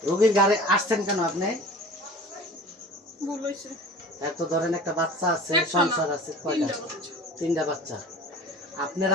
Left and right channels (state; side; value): normal; both; correlation 0.40